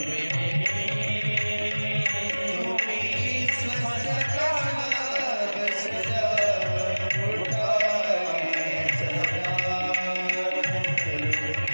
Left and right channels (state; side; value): inverted; both; correlation -1.00